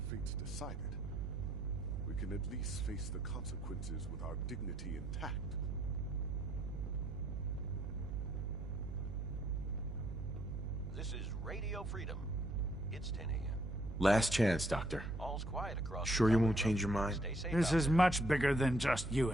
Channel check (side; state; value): right; noise; hum, 5 dB below the sound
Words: fate's decided, we can at least face the consequences with our dignity intact. This is Radio Freedom. It's 10 a.m. Last chance, Doctor. All's quiet across. Sure you won't change your mind? Stay safe This out is much bigger than just you